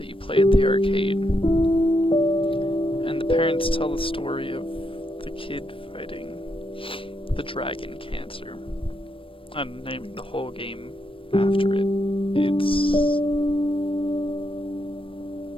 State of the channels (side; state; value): right; late; 0.26 ms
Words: you play at the arcade, and the parents tell the story of the kid fighting the dragon cancer and naming the whole game after it.